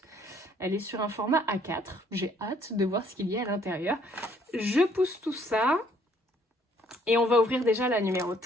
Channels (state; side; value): normal; both; correlation 0.64